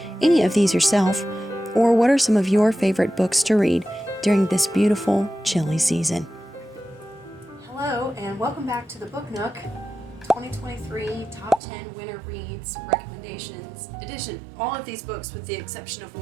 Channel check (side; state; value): left; drops out; at 11.6 s